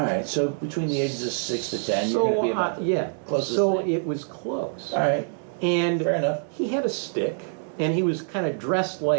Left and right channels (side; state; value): left; silent; digital silence